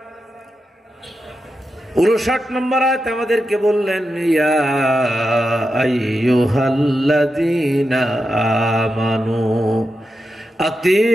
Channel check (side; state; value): both; normal; correlation 0.89